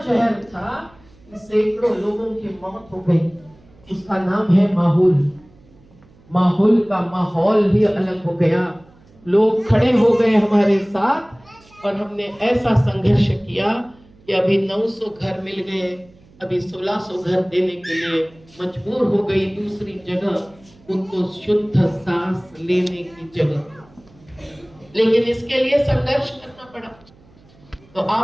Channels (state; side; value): noise; right; hum, 28 dB below the sound